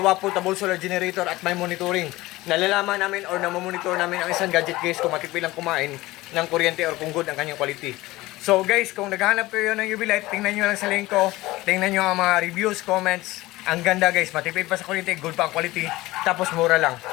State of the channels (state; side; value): quieter; right; 18.9 dB